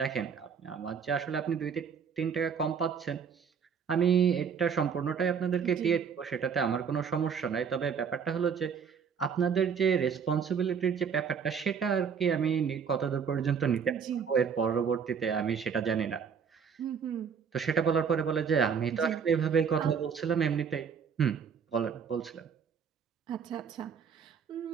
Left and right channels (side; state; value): left; quieter; 6.7 dB